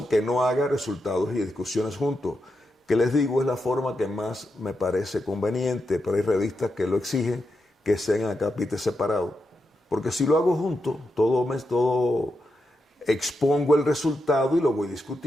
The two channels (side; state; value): both; normal; correlation 0.86